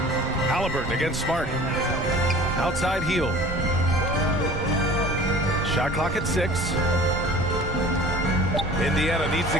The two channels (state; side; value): noise; right; rumble, 8 dB below the sound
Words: Halliburton against Smart. Outside Hield. Shot clock at 6. Indiana needs to